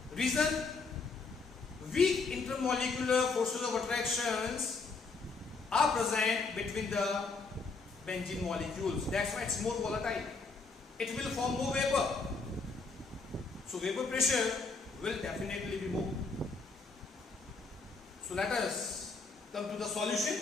Reason: weak intermolecular forces of attractions are present between the benzene molecules. That's why it's more volatile. It will form more vapor. So vapor pressure will definitely be more. So let us come to the solution.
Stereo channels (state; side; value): quieter; right; 4.2 dB